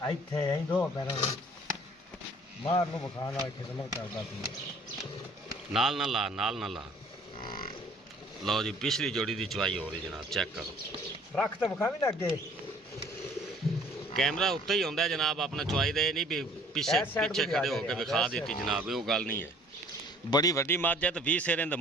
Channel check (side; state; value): both; normal; correlation 0.54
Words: इत्थे ऐ दो पैरों मार नु बखाना खिदमत करदा तू नाल ना ला, नाल ना ला। लो जी पिछली जोड़ी की चवाई हो रही जनाब। चेक करो रख तो बखा भी ना अगे कैमरा उत्ते ही होंदा है जनाब अपना चवाई दे नहीं भी पीछे पीछे खड़े होकर विखा दी जनाब। वो गल नहीं है। बड़ी वड्डी मझ है तो 20 सिर इहदे